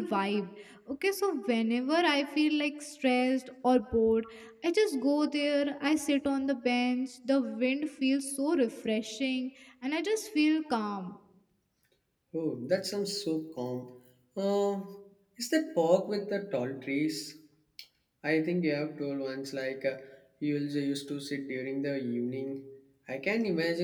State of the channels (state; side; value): identical; both; correlation 1.00